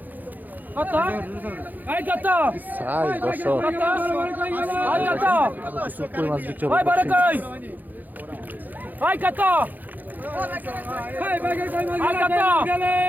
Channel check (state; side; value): late; left; 0.084 ms